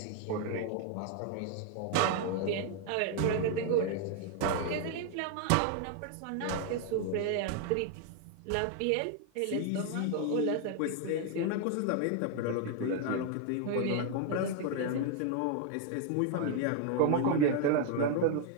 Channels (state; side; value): different; both; correlation 0.00